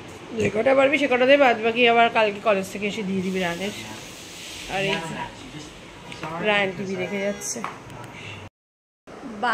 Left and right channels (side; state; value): both; identical; correlation 1.00